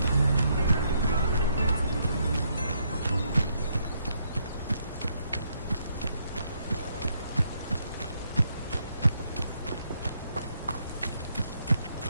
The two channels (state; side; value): inverted; both; correlation -0.74